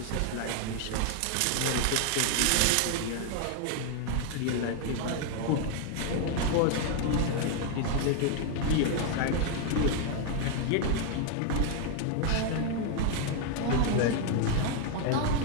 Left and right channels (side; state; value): both; different; correlation 0.01